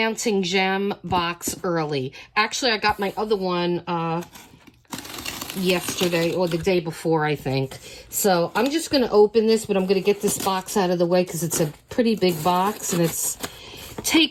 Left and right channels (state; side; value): identical; both; correlation 1.00